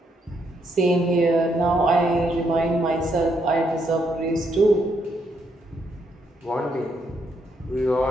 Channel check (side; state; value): both; normal; correlation 0.76